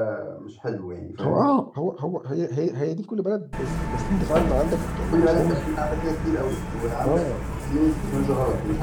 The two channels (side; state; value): both; identical; correlation 1.00